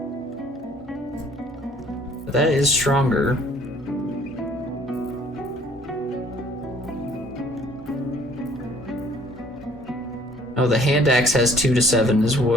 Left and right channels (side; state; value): both; normal; correlation 0.57